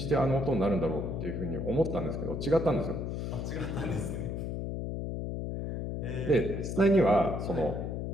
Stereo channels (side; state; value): left; noise; hum, 3 dB below the sound